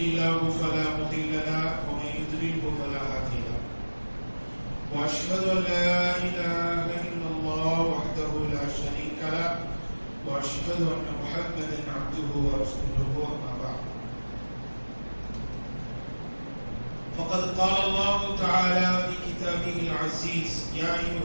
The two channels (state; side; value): inverted; both; correlation -1.00